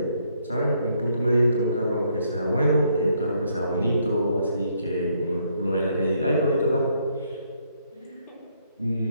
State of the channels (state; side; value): inverted; both; correlation -0.71